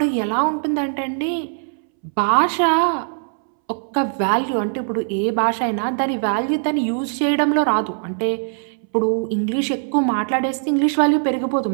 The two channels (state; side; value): silent; left; 65 dB below the other